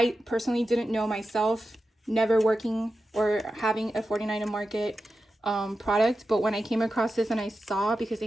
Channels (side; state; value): both; normal; correlation 0.92